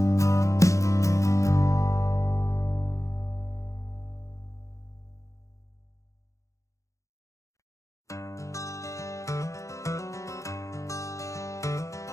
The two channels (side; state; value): right; late; 0.15 ms